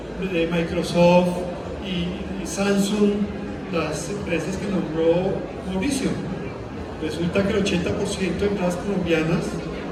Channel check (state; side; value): identical; both; correlation 1.00